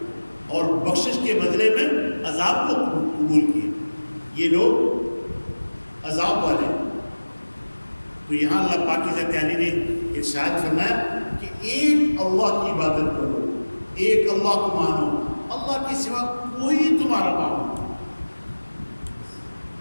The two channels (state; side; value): inverted; both; correlation -1.00